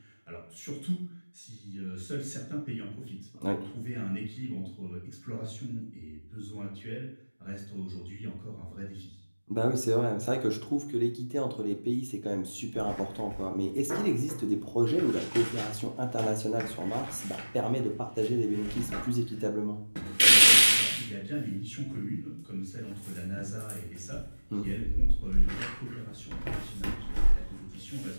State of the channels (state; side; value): inverted; both; correlation -1.00